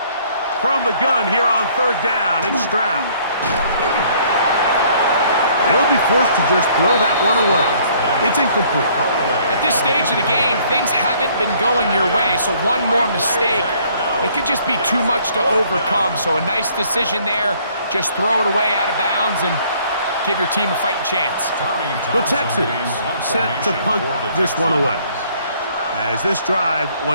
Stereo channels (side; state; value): both; inverted; correlation -0.61